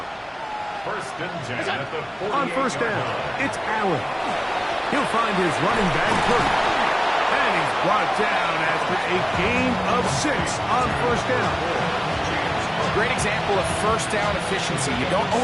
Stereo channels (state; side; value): identical; both; correlation 1.00